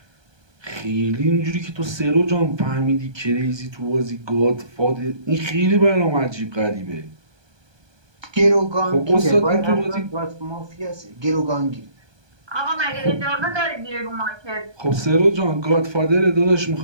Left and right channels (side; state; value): left; late; 1.2 ms